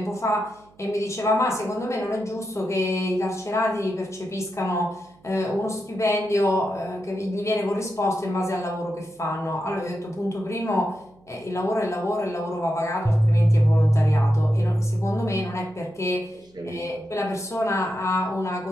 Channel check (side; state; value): right; noise; hum, 29 dB below the sound